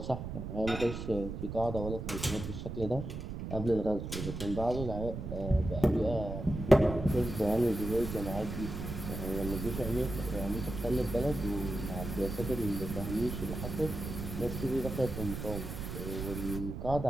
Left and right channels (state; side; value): noise; right; rumble, 6 dB below the sound